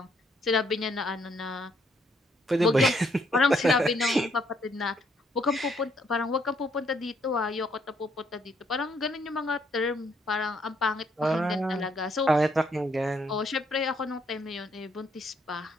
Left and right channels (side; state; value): both; normal; correlation 0.70